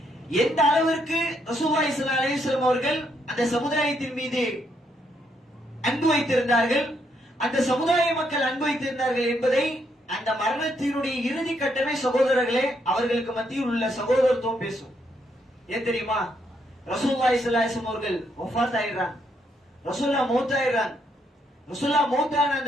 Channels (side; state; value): both; normal; correlation 0.75